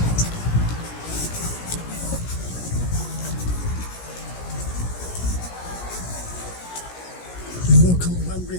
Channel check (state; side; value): late; right; 17 ms